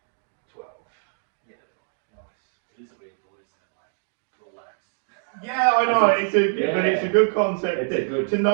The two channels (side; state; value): left; silent; digital silence